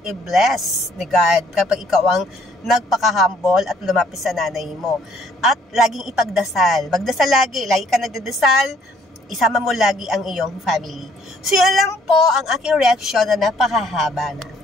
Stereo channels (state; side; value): normal; both; correlation 0.63